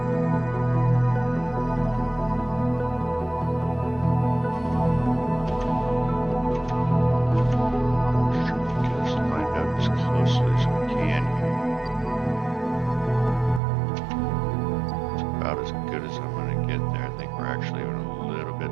So get us lined up as closely as we can here. It's about as good as I'm going to get there. I think we're actually even a little bit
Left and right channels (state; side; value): drops out; left; at 13.6 s